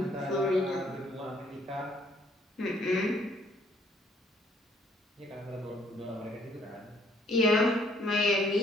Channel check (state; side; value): normal; both; correlation 0.63